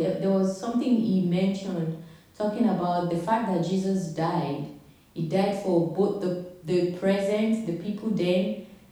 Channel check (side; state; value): both; identical; correlation 1.00